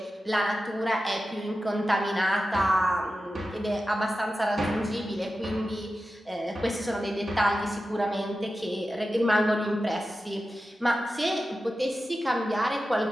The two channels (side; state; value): both; normal; correlation 0.92